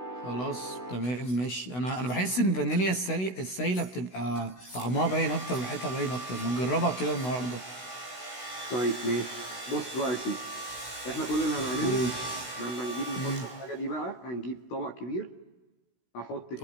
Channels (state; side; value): late; right; 16 ms